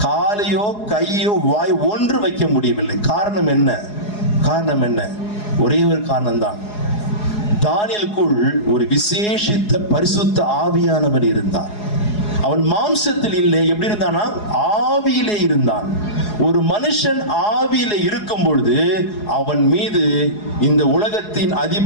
காலையோ கையோ வாய் ஒன்று வைக்க முடியவில்லை. காரணம் என்ன? காரணம் என்ன? ஒரே ஒரு காரணம் தான், தானியேலுக்குள் ஒரு விசேஷித்த பரிசுத்த ஆவியானவர் இருந்தார். அவன் மாம்சத்தில் இல்லை, எப்படி இருந்தானா? ஆவியிலே இருந்தான். ஒரு மனுஷன் ஆவியிலே இருக்கும் பொழுது அவன் மீது இந்த உலகத்தின்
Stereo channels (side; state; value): right; late; 4.8 ms